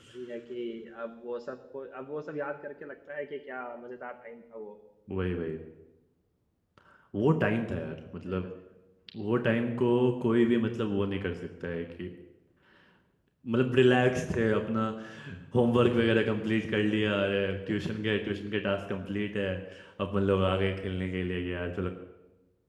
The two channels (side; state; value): both; identical; correlation 1.00